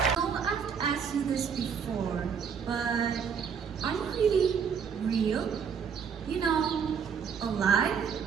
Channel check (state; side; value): quieter; left; 6.7 dB